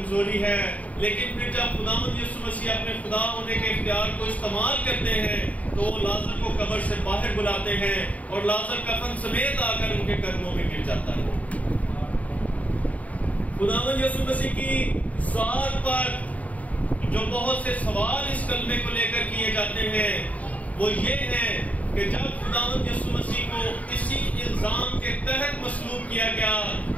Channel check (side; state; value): right; late; 0.070 ms